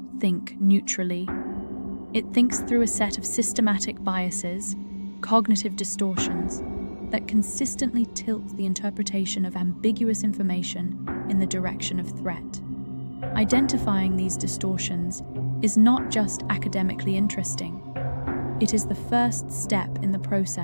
think neutrally. It thinks through a set of systematic biases, cognitive distortions, that consistently tilt the interpretation of ambiguous information in the direction of threat. Identifying these distortions is not just academically interesting. It is the first step in the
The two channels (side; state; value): both; inverted; correlation -1.00